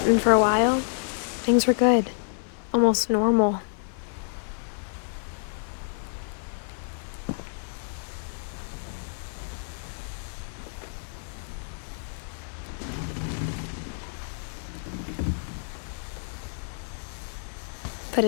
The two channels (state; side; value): silent; right; 59 dB below the other